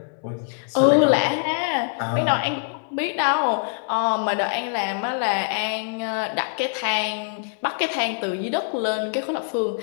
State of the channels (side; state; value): right; silent; digital silence